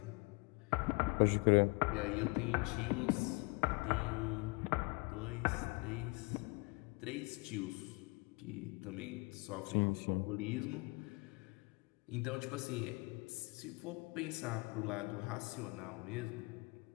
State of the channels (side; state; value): right; quieter; 28.4 dB